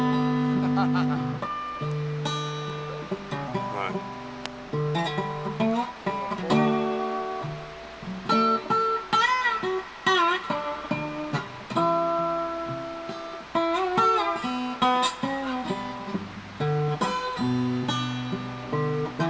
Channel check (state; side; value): identical; both; correlation 1.00